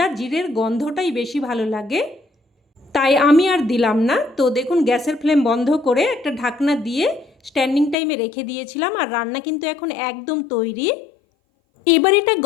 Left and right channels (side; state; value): right; drops out; at 8.0 s